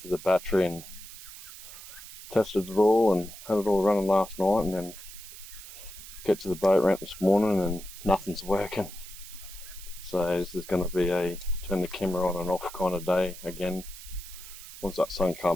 the battery, and tested it all and had it all running last night, and then get to the boat ramp this morning and nothing's working. So this is going to be a turn the camera on and off kind of day again. Once that sun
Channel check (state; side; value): noise; right; hiss, 14 dB below the sound